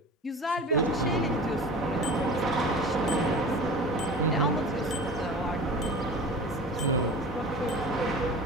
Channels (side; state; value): both; normal; correlation 0.36